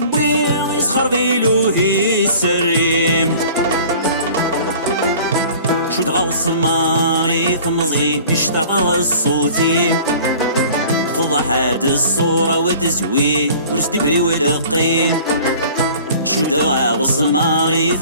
يسخر بيلوهي السريم شو تغوص ماري ثمزي يشتاق الصوتي فضح هاد الصورة وتزوي ورسدي بري ولقيم شو تغوص ماري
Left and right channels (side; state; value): both; inverted; correlation -0.46